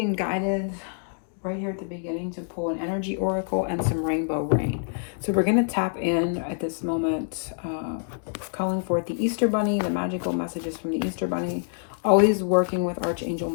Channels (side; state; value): right; silent; digital silence